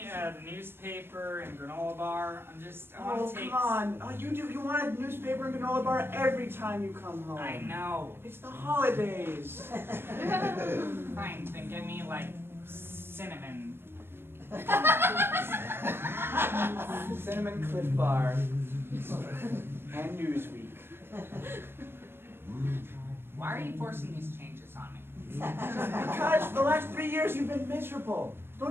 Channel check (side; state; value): left; late; 0.11 ms